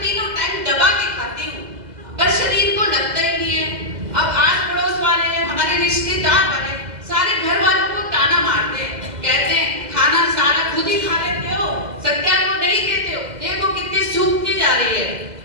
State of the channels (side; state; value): left; late; 2.0 ms